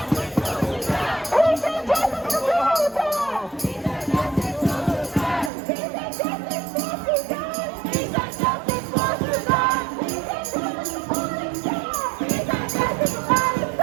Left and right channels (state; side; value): drops out; left; at 5.5 s